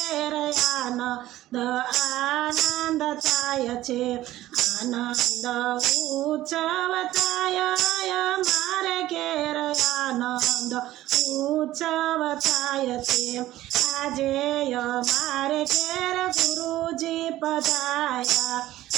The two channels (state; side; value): quieter; left; 15.1 dB